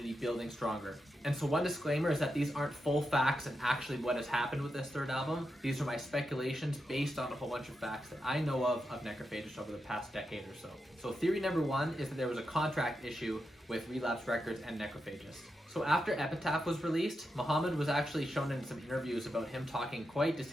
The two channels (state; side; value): normal; both; correlation 0.87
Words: building stronger. And so one disclaimer is that these aren't full facts and actually what has happened with this third album. These are my speculations based on a whole bunch of facts that I know of Necrophagist over the past decade or so. So theory number 1 is that there was a contract issue with Relapse Records and Necrophagist. So after Epitaph was released, Muhammed was actually shown in some interviews about him talking quite